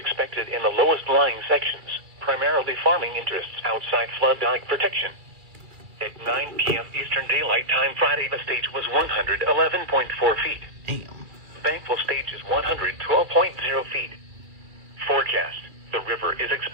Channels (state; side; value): late; left; 2.4 ms